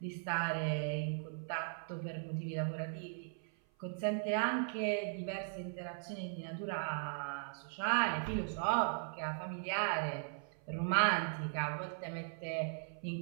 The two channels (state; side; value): silent; left; 52 dB below the other